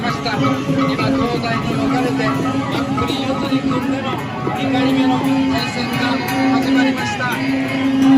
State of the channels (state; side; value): identical; both; correlation 1.00